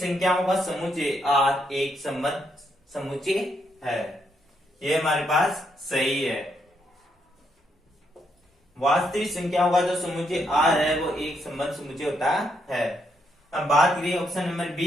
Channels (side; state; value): both; normal; correlation 0.77